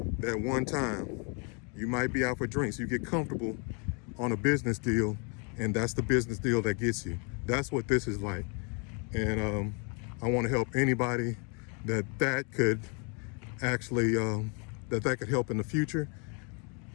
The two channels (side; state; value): right; quieter; 35.7 dB